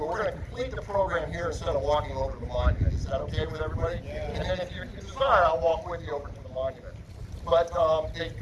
we're going to complete the program here instead of walking over to the monument. Is that okay with everybody? Yeah. And then if you desire, I'll walk with you over to the monument. But they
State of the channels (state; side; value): identical; both; correlation 1.00